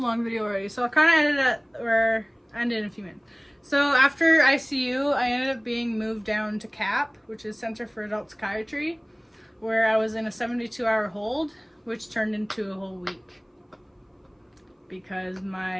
video already, so I kind of ended in a few minutes. So after ICU, I ended up being moved down to CAP, which is Center for Adult Psychiatry, where I was in a 72-hour hold, which turned into a whole week because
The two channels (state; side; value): identical; both; correlation 1.00